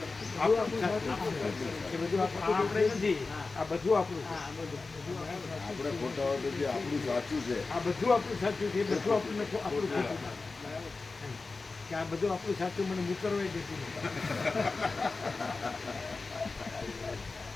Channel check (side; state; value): right; quieter; 3.9 dB